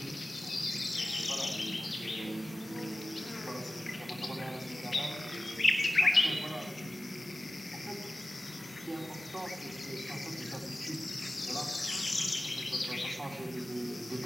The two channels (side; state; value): both; normal; correlation 0.96